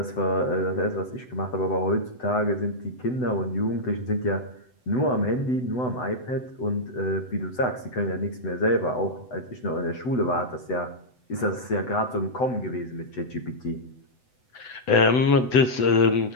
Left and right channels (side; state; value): right; late; 8.0 ms